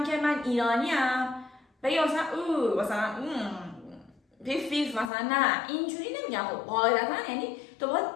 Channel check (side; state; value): right; drops out; at 5.1 s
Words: که من ایرانیم بگه مثلا مثلا پیف مثلا، نه اینجوری نمیگم. خب قاعدتا یعنی تو باید